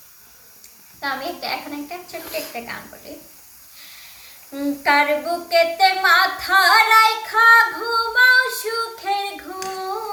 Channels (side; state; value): both; identical; correlation 1.00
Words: তা আমি এখন একটা ছোট্ট একটা গান বলি। কার বুকেতে মাথা রাইখা ঘুমাও সুখের